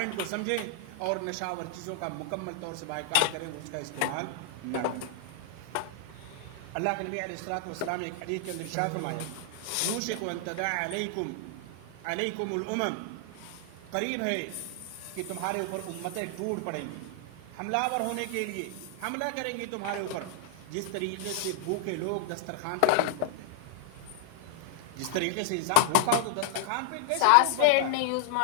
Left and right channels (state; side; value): different; both; correlation 0.00